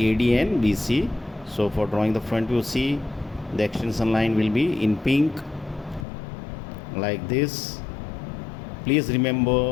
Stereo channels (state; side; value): drops out; right; at 6.1 s